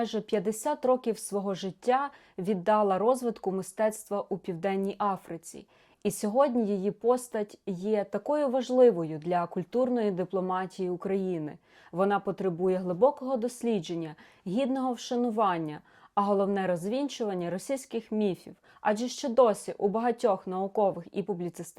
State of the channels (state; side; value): identical; both; correlation 1.00